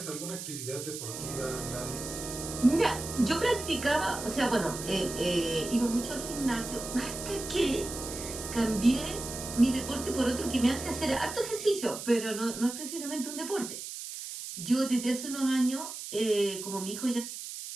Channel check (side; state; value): right; noise; hiss, 8 dB below the sound